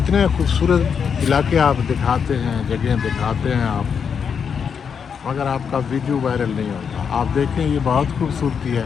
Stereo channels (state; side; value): quieter; right; 6.7 dB